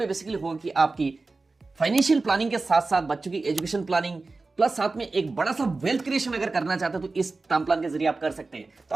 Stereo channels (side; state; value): left; quieter; 3.7 dB